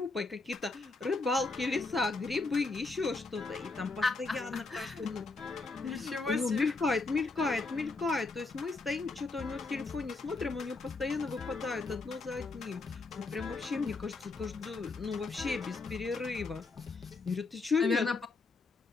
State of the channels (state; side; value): quieter; right; 3.7 dB